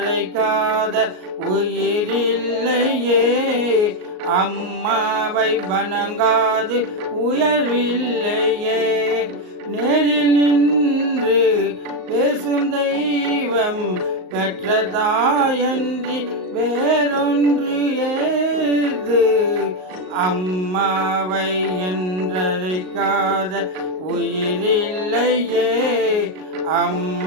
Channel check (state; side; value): late; left; 38 ms